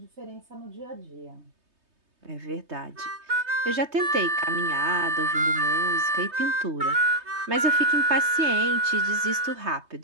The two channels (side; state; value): left; late; 3.2 ms